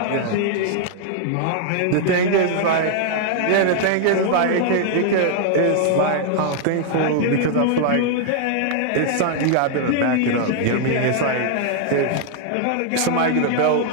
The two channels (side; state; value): both; different; correlation -0.01